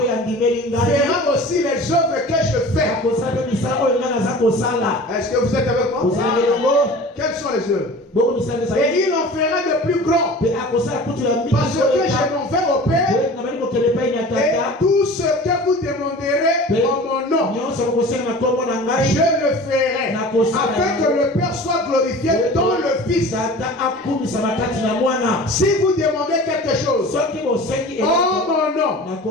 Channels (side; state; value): both; normal; correlation 0.40